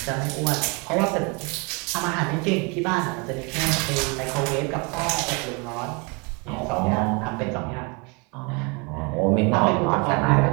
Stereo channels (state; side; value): quieter; left; 31.0 dB